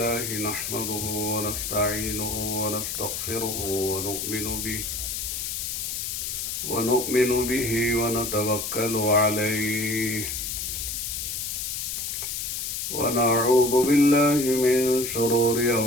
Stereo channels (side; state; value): left; noise; hiss, 3 dB below the sound